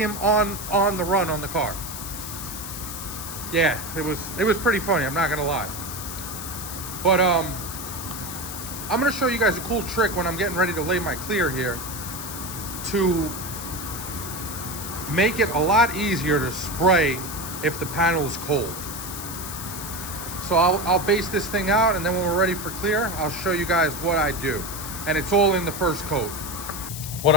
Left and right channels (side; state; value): left; noise; hiss, 8 dB below the sound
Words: on the run on the car. Yeah, it was pretty funny, I'm not gonna lie. But I'm gonna show you guys a cool trick when I'm getting ready to lay my clear here to make it a lot easier to spray if the panel is cold. So I'll base this thing out, and then when we're ready for clear, I'll show you guys what I do. And it's all in the first coat. What